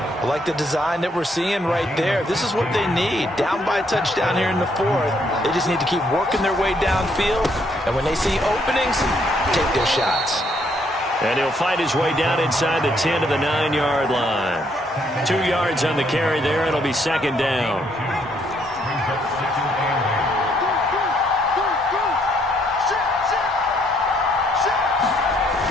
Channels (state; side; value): normal; both; correlation 0.70